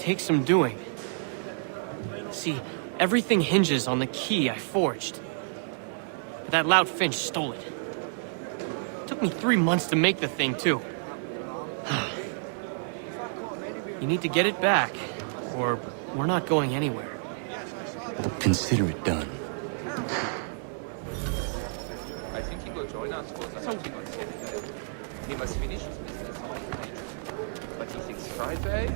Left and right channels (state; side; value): silent; left; digital silence